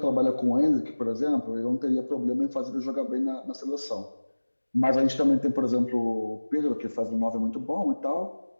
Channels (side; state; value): both; inverted; correlation -1.00